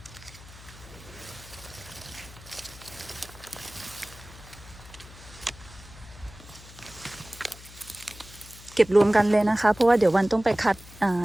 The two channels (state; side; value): noise; left; hum, 19 dB below the sound